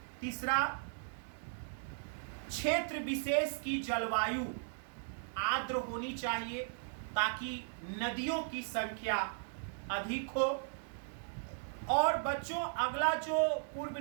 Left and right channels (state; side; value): silent; left; digital silence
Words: तीसरा, क्षेत्र विशेष की जलवायु आर्द्र होनी चाहिए ताकि नदियों की संख्या अधिक हो। और बच्चों, अगला जो पूर्व